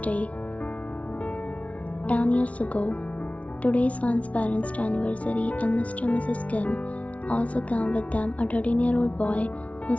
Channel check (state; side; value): late; right; 0.065 ms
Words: 10 years ago, today's Swan's parents' anniversary, and Mr. and Mrs. Kim also came with them, a 13-year-old boy who